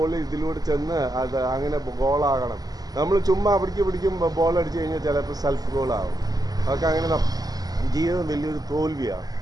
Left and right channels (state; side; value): late; left; 0.18 ms